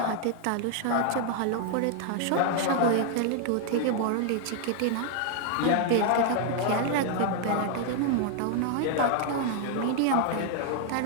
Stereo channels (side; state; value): both; different; correlation 0.00